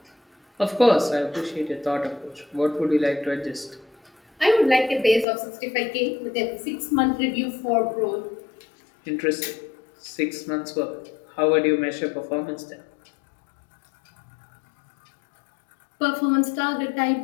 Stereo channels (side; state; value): right; drops out; at 5.2 s